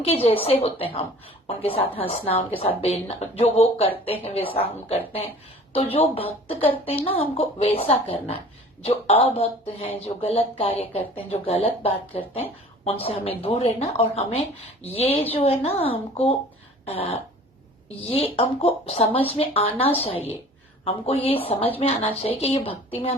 जैसे होते हैं हम, उनके साथ हंसना, उनके साथ बेलना, जो वो करते हैं वैसा हम करते हैं। तो जो भक्त करते हैं ना हमको वैसा करना है। जो अभक्त हैं, जो गलत कार्य करते हैं, जो गलत बात करते हैं, उनसे हमें दूर रहना। और हमें ये जो है ना ये हमको समझ में आना चाहिए, हमको ये समझ में आना चाहिए कि ये भक्ति में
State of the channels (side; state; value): both; normal; correlation 0.46